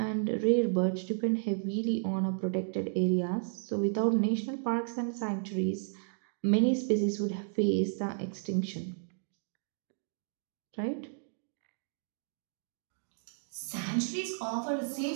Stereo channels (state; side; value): silent; left; digital silence